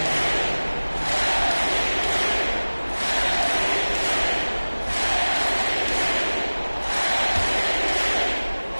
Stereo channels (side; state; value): both; inverted; correlation -1.00